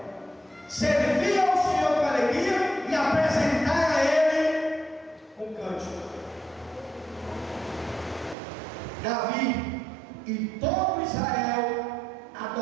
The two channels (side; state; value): left; drops out; at 8.3 s